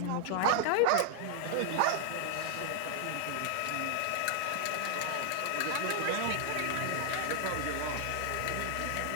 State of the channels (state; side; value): different; both; correlation 0.00